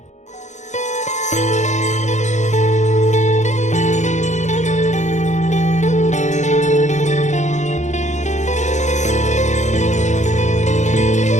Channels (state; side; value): late; right; 0.34 ms